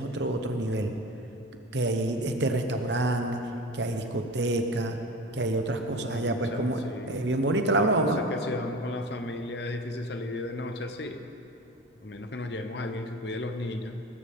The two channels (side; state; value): both; normal; correlation 0.33